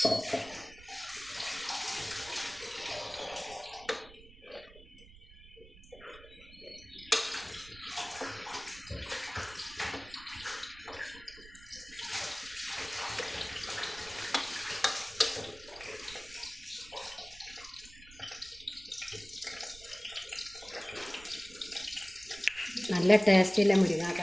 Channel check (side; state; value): right; noise; rumble, 21 dB below the sound